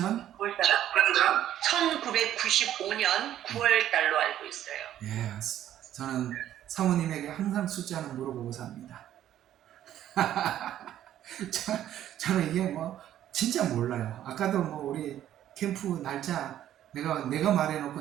1995년 9월 달로 알고 있어요. 예, 저는 사모님에게 항상 숫자는 물어보고 삽니다. 저는 이게 뭐 진짜 몰라요. 아까도 뭐 우리 캠프 날짜 내가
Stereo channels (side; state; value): left; quieter; 11.7 dB